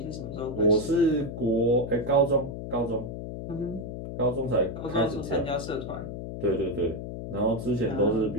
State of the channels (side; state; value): left; noise; hum, 7 dB below the sound